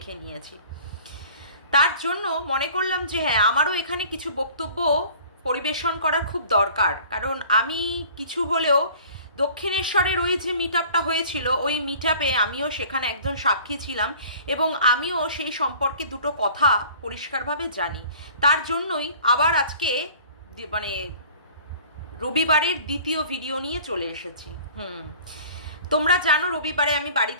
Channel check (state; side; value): inverted; both; correlation -0.48